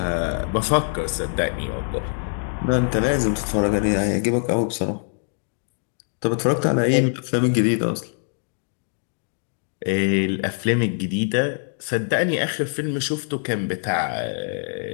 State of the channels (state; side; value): silent; right; digital silence